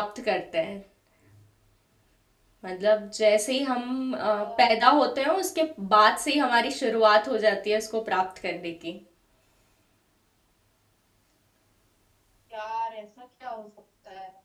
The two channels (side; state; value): both; identical; correlation 1.00